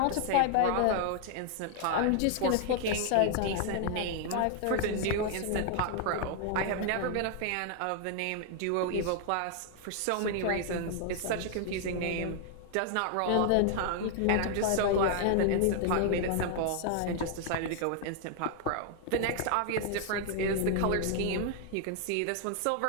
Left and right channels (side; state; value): both; different; correlation 0.00